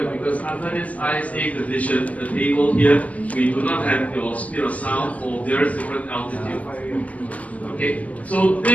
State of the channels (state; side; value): late; right; 0.073 ms